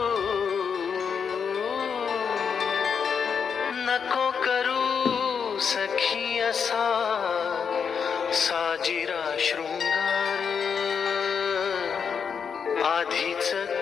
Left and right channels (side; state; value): right; quieter; 6.6 dB